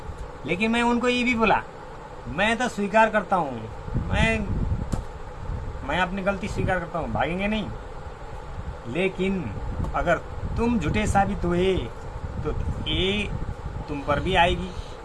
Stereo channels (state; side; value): identical; both; correlation 1.00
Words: लेकिन मैं उनको ये भी बोला, मैं तो स्वीकार करता हूँ, मैं अपनी गलती स्वीकार करता हूँ, भागेंगे नहीं। लेकिन अगर तुम झूठे साबित हुए तो ये तुम पर भी आएगी,